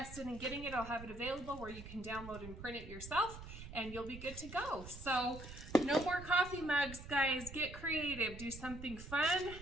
in getting it, I'll have it available where you can download and print it yourself, and you'll be good to go. So no more coffee mugs, guys. Get creative. Do something fun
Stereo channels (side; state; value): right; noise; rumble, 12 dB below the sound